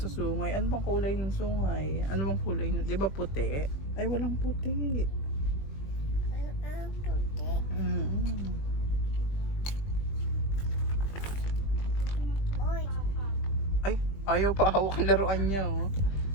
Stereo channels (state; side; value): late; right; 20 ms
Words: sungay. Ano bang kulay ng sungay? Ano bang kulay? Di ba puti? Ay, walang puti. Ay, ayaw pa hawak ang laruan niya. Oh.